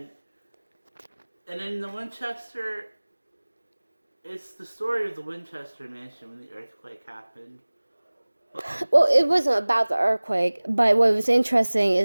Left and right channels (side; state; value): both; inverted; correlation -1.00